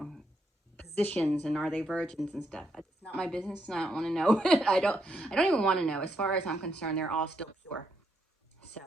positions and are they virgins and stuff. It's not my business, and I don't want to know. I don't even want to know. As far as I'm concerned, they're all still pure. So,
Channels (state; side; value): normal; both; correlation 0.78